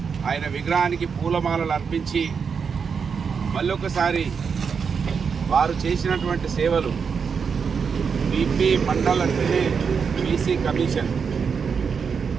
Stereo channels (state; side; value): quieter; left; 6.1 dB